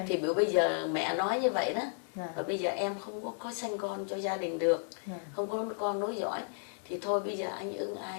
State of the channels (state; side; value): silent; right; 55 dB below the other